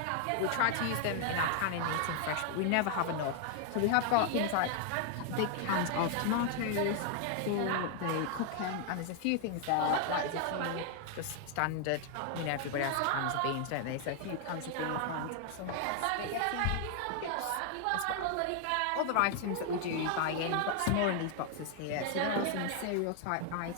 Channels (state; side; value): different; both; correlation 0.00